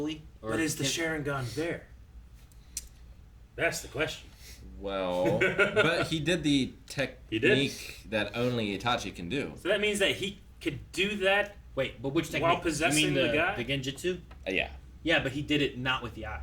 Or But is the can- Sharingan there? That's the question. Well, but he did the technique that only Itachi can do. So that means that he could do that. Wait, but which technique? While possessing you mean the guy? The Genjutsu? Yeah. Yeah, but he did it not with the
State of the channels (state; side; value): identical; both; correlation 1.00